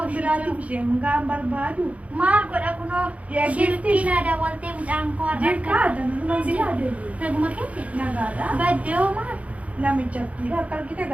biraatiif isheen gaan barbaadu. maal godha kunoo Yaa shilkii gifti. naa daawwaltee mucaan koo Jirkaa danuma si yaadatu. naguma keessa Nagaadha. baddee hoo maal Namichatti akka argite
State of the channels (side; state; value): left; late; 0.066 ms